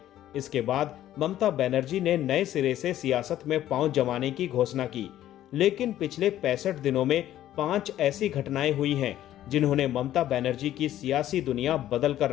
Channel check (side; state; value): right; quieter; 12.7 dB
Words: इसके बाद ममता बनर्जी ने नए सिरे से सियासत में पांव जमाने की घोषणा की। लेकिन पिछले 65 दिनों में 5 ऐसी घटनाएं हुई हैं जिन्होंने ममता बनर्जी की सियासी दुनिया बदल कर